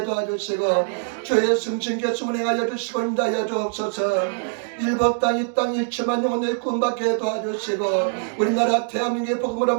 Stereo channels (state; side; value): silent; left; digital silence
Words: 도와주시고 주의 성신께서 운행하여 주시고 인도하여 주옵소서. 일법 땅 이 땅 일체만 영혼을 구원받게 도와주시고 우리나라 대한민국의 복음으로